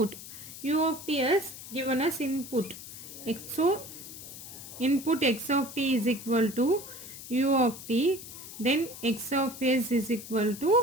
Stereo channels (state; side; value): noise; left; hiss, 13 dB below the sound